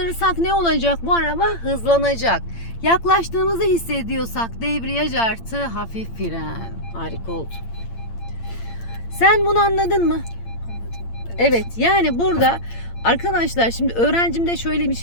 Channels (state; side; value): late; right; 8.8 ms